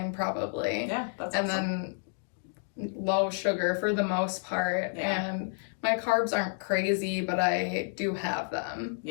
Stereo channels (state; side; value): silent; right; 58 dB below the other